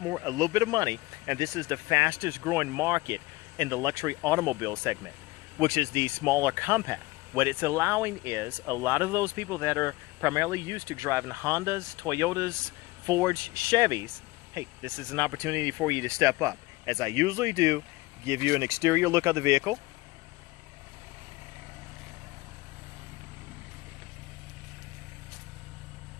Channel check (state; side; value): quieter; right; 20.9 dB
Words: bit of money, and this is the fastest growing market in the luxury automobile segment, which is the smaller compact. What it's allowing is a lot of those people that are primarily used to driving Hondas, Toyotas, Fords, Chevys, hey, this is an opportunity for you to step up. As I usually do, give you an exterior look of the vehicle.